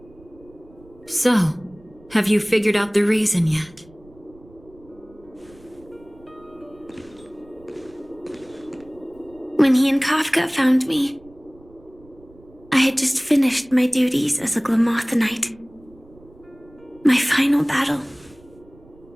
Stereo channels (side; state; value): right; noise; rumble, 26 dB below the sound